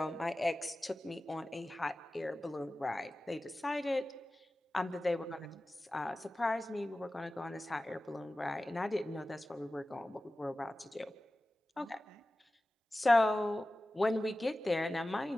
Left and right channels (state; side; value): normal; both; correlation 0.96